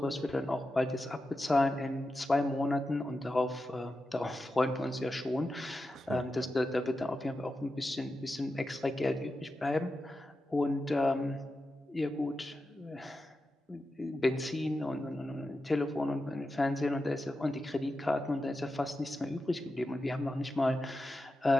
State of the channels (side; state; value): both; normal; correlation 0.90